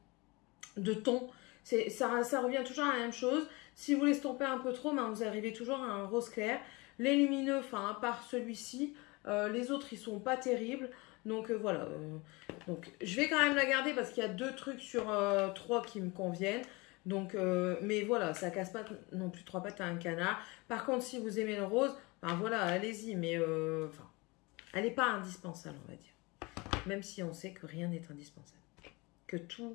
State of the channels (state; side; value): quieter; right; 25.4 dB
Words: ton. Ça revient toujours à la même chose. Si vous l'estompez un peu trop, vous arrivez toujours à un rose clair. Les lumineux, enfin, à part celui-ci, les autres, ils sont pas terribles. Donc voilà. Donc je vais quand même la garder parce qu'il y a 2 trucs sur 3 qui me conviennent. Donc, mais voilà, ça casse pas non plus 3 pattes à un canard. Par contre, si vous aimez le rose, voilà, allez-y. Mais enfin, elle n'est pas indispensable, on va dire. Même si on sait que rien n'est indispensable. Que